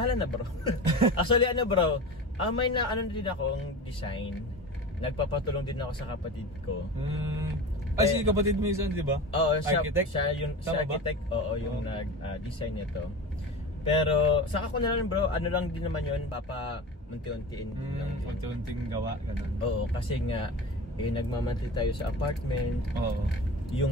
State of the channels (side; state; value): both; normal; correlation 0.31